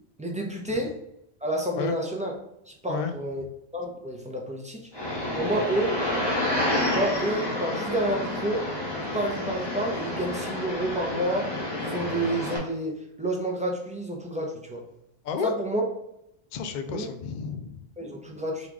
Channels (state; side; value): normal; both; correlation 0.11